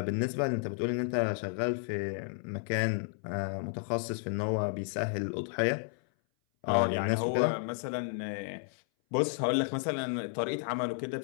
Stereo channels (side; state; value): right; silent; 56 dB below the other